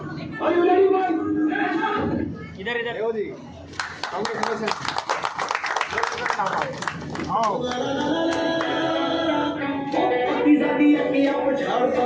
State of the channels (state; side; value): identical; both; correlation 1.00